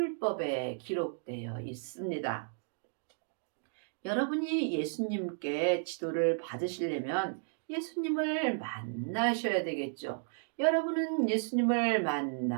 기록되어 있습니다. 여러분이 예수님께 지도를 받으시려면 예수님을 만나셔야 되겠죠. 여러분은 예수님을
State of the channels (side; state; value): left; silent; digital silence